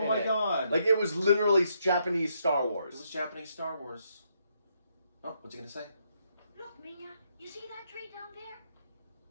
in my it. god. Like it was literally Japanese Star It Wars. was Japanese Star Wars. Oh, what's he gonna say? Look, Mina, you see that tree down there?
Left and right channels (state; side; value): inverted; both; correlation -0.76